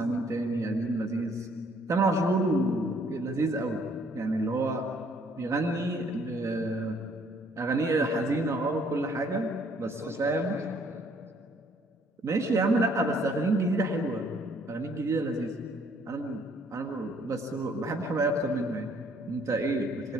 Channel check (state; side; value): normal; both; correlation 0.63